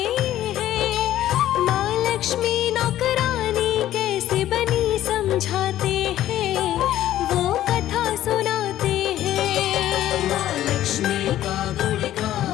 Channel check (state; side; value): quieter; right; 13.0 dB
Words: हैं। माँ लक्ष्मी नौकरानी कैसे बनी समझाते हैं, वो कथा सुनाते हैं। माँ लक्ष्मी का